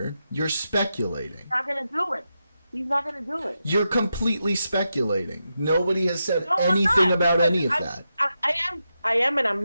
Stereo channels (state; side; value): inverted; both; correlation -0.87